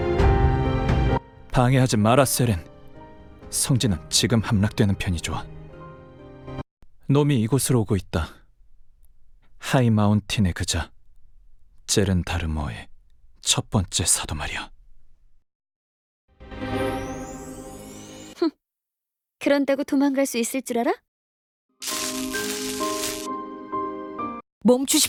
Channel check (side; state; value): both; identical; correlation 1.00